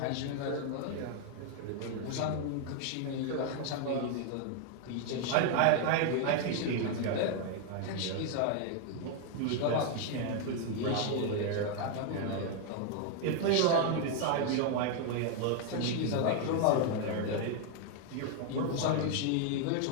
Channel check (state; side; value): different; both; correlation 0.00